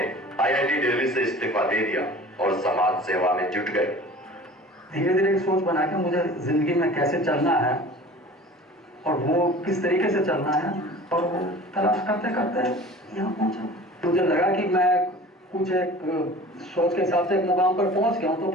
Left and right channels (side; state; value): both; normal; correlation 0.42